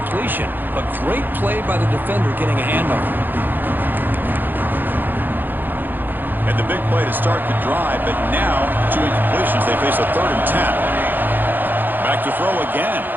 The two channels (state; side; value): late; left; 0.090 ms